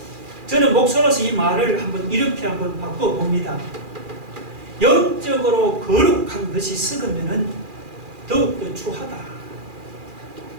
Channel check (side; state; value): left; late; 2.4 ms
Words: 저는 목사로서 이 말을 이렇게 바꿔봅니다. 영적으로 거룩한 것이 썩으면은 더욱더 추하다.